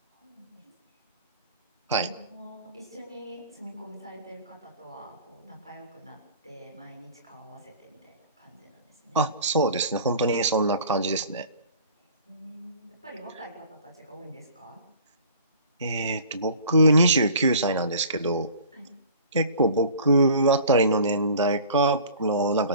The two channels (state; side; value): inverted; both; correlation -0.47